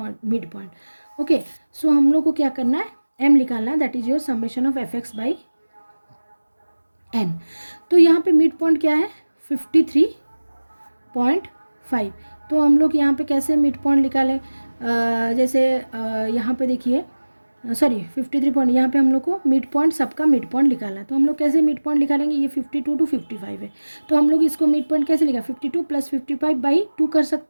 midpoint. Okay, so हम लोग को क्या करना है, m निकालना है, that is your summation of fx by n. तो यहाँ पे मिड पॉइंट क्या है 53.5। तो हम लोग यहाँ पे कैसे मिड पॉइंट निकालें, जैसे यहाँ पे देखिए, सॉरी 53 पॉइंट, यहाँ पे हम लोग को मिड पॉइंट, सबका मिड पॉइंट निकालना है। तो हम लोग कैसे मिड पॉइंट निकालेंगे, ये 52 टू 55 है, तो हम लोग इसको मिड पॉइंट कैसे लिखा, 52 प्लस 55 बाई 2 कर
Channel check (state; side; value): inverted; both; correlation -1.00